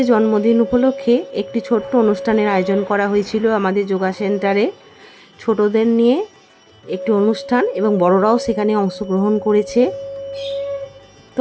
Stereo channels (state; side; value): identical; both; correlation 1.00